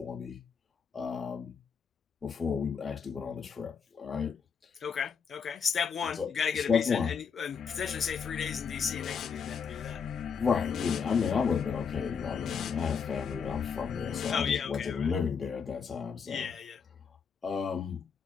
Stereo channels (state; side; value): quieter; right; 6.3 dB